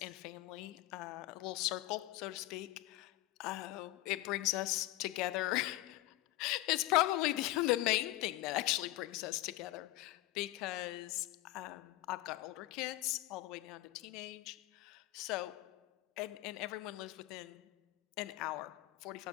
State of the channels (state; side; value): quieter; right; 17.5 dB